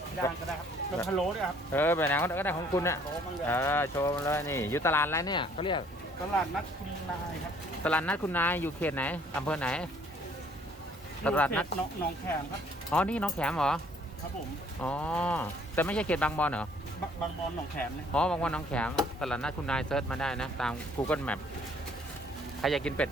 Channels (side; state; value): both; normal; correlation 0.60